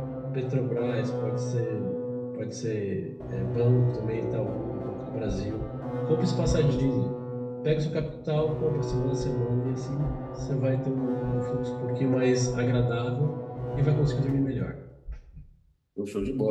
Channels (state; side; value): identical; both; correlation 1.00